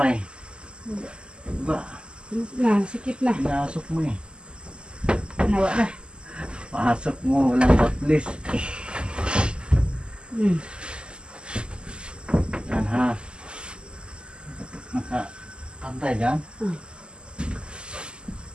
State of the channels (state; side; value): late; left; 0.049 ms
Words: Baba. Na, sikip na. Pinasok mo eh. Nawa na. Pasok mo, walang batlis. Yan ha. Nakapantay dyan.